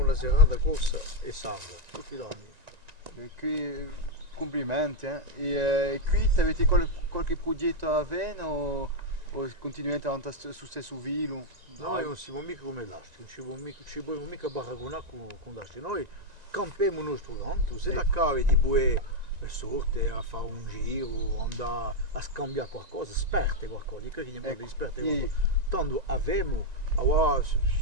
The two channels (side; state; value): left; late; 1.9 ms